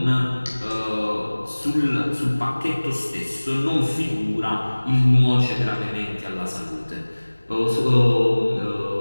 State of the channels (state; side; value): inverted; both; correlation -1.00